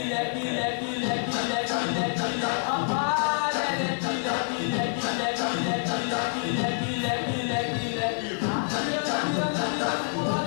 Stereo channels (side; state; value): right; silent; 60 dB below the other